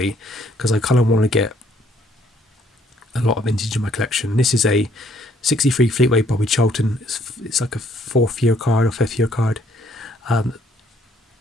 because I kind of want to get a lot of vintage in my collection. This is a 63 Fleetway Bobby Charlton. It's like a 4th year card or 5th year card.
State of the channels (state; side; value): normal; both; correlation 0.65